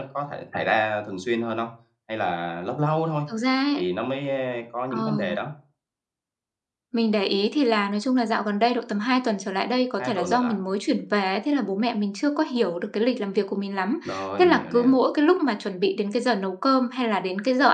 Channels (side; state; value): both; identical; correlation 1.00